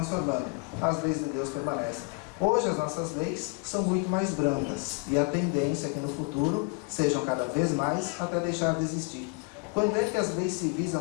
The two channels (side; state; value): right; quieter; 30.7 dB